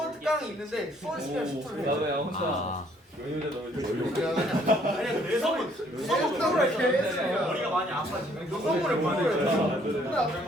특강이 있는데 수원 시간 10초를 해. 아 아니야, 내 선물. 머리가 많이 아파 지금. 너 선물을 보내야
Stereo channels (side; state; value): both; normal; correlation 0.63